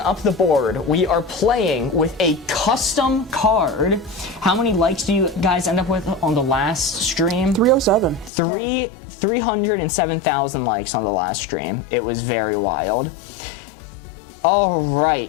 up the board. We are playing with a custom card. How many likes do you guys end up with on the last stream? 307. 307,000 likes on the last stream. It was very wild.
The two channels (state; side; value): drops out; right; at 8.3 s